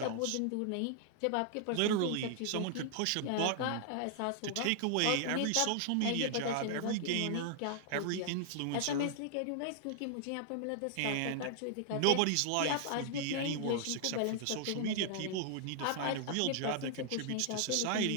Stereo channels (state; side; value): different; both; correlation -0.01